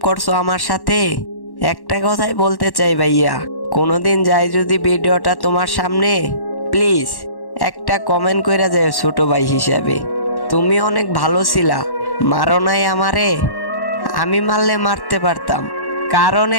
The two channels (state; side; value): late; right; 1.1 ms